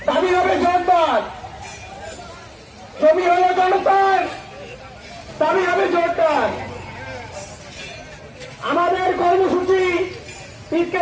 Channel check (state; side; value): identical; both; correlation 1.00